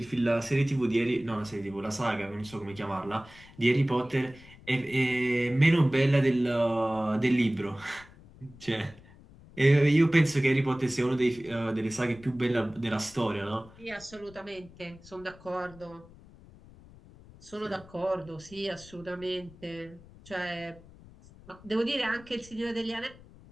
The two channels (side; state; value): left; noise; rumble, 22 dB below the sound